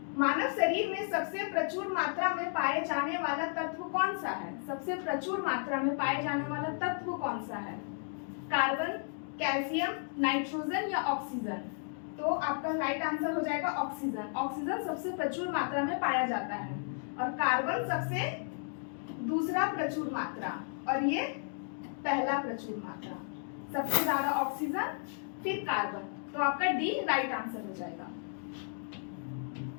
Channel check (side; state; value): right; silent; 55 dB below the other